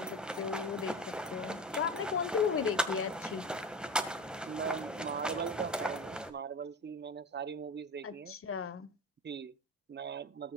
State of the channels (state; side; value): normal; both; correlation 0.29